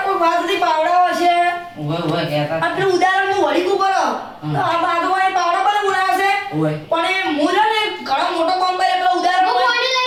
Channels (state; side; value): identical; both; correlation 1.00